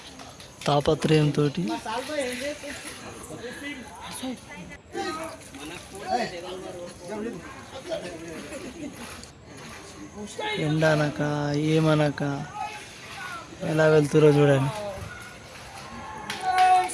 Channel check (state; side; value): identical; both; correlation 1.00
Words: తాపత్రయంతో ఎండనక ఏమనక ఎలా వెళ్తురో చూడండి.